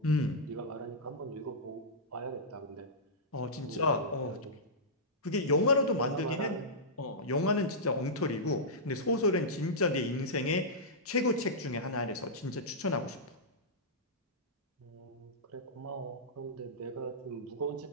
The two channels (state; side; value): normal; both; correlation -0.13